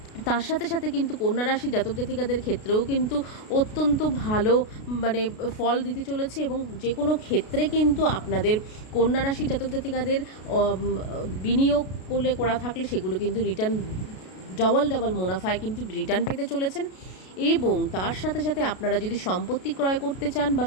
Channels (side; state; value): right; late; 33 ms